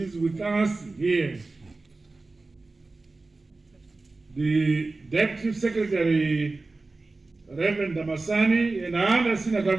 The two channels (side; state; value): left; quieter; 3.4 dB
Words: with us here, the Deputy Secretary Reverend Damasani, and other senior